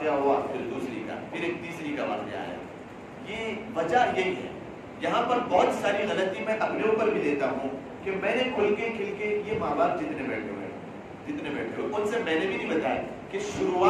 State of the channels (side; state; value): both; identical; correlation 1.00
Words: ہوا پھر دوسری کا، پھر ایک تیسری کا واقعہ آیا۔ یہ وجہ یہی ہے۔ یہاں پر بہت ساری غلطی میں اپنے اوپر بھی لیتا ہوں کہ میں نے کھل کے یہ ماں باپ جتنے بیٹھے ہوئے ان سے میں نے بھی نہیں بتایا کہ